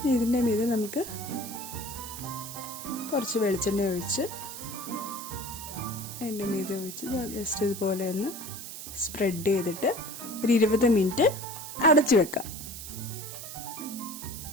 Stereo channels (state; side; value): noise; right; hiss, 10 dB below the sound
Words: ഇതിൻ്റെ മീതെ നമുക്ക് കുറച്ച് വെളിച്ചെണ്ണ ഒഴിച്ച് അതിൻ്റെ മീതെ ഒഴിച്ച് ജസ്റ്റ് ഇതുപോലെ ഒന്ന് സ്പ്രെഡ് ചെയ്തിട്ട് ഒരു 20 മിനിറ്റ് അടച്ചു വെക്കാം.